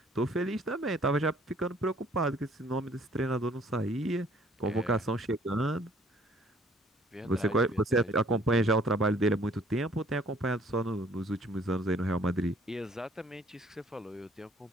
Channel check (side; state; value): both; normal; correlation 0.59